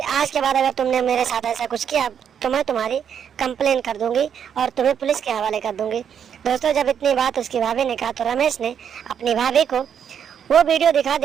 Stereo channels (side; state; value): left; quieter; 8.2 dB